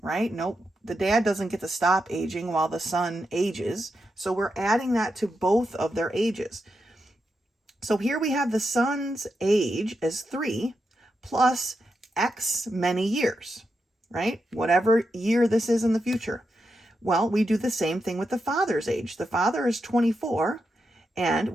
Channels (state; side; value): normal; both; correlation 0.86